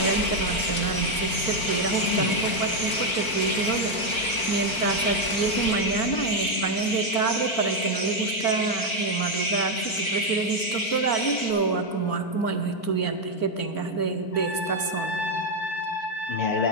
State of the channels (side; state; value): right; late; 4.5 ms